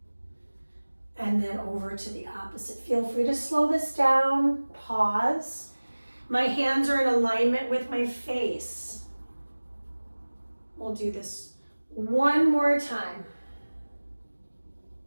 and then over to the opposite. Feel free to slow this down, pause. My hands are in alignment with my face. We'll do this one more time.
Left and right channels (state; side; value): inverted; both; correlation -1.00